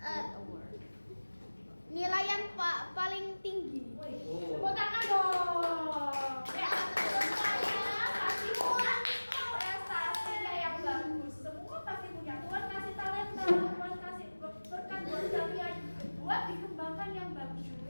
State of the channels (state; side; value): inverted; both; correlation -1.00